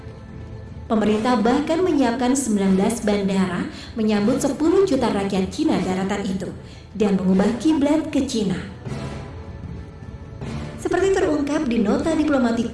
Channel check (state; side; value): identical; both; correlation 1.00